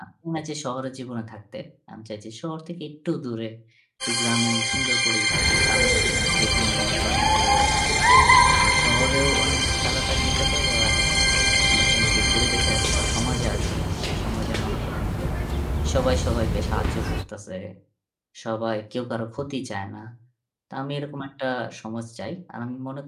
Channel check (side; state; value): both; identical; correlation 1.00